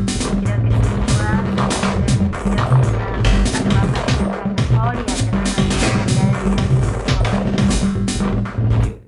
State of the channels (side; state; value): both; identical; correlation 1.00